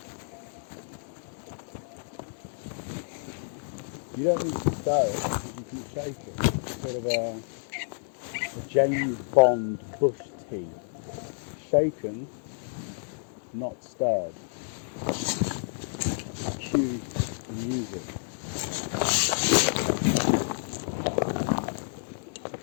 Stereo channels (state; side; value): silent; right; digital silence